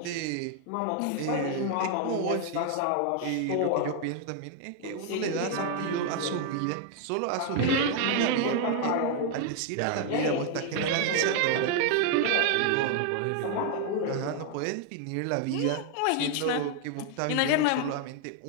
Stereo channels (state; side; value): different; both; correlation 0.00